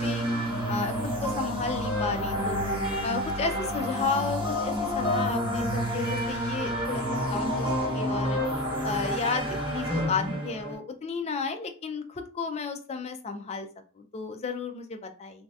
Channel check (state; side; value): normal; both; correlation 0.25